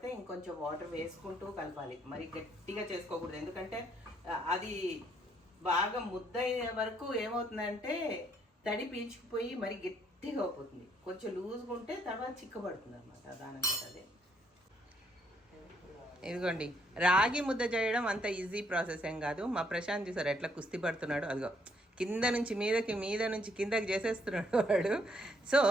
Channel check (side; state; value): both; normal; correlation 0.70